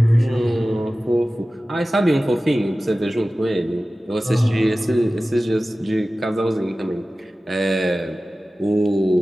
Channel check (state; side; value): normal; both; correlation 0.96